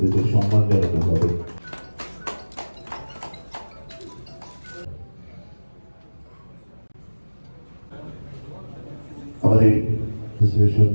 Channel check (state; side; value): inverted; both; correlation -1.00